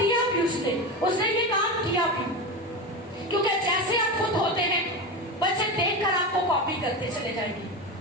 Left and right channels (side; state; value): both; normal; correlation 0.21